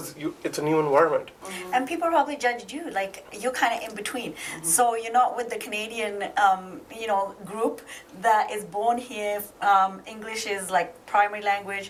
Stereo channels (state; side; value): identical; both; correlation 1.00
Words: it's a new environment. And people probably judged you, like you're kind of in between. So you're not with the Canadian, group that is born here. English is like primary